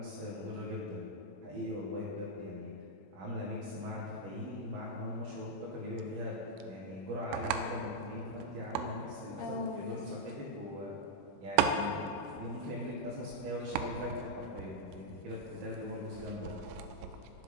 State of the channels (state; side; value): late; left; 21 ms